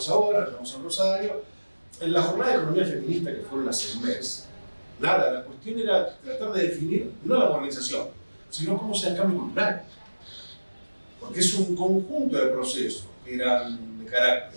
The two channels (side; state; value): both; inverted; correlation -1.00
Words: ahora, nos llevamos a Rosario. En la jornada de economía feminista que fueron hace un mes, nada, la cuestión era tratar de definir no la modernización, sino cómo sea el cambio cultural. Porque es un conjunto de procesos que eran de